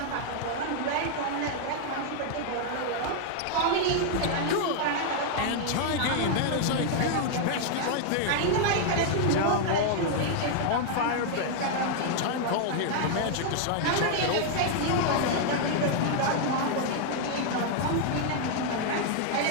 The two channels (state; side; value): different; both; correlation 0.00